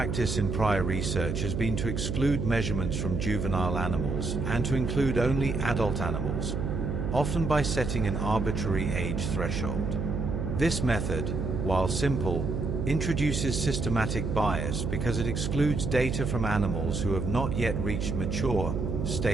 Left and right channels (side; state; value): right; noise; hum, 2 dB below the sound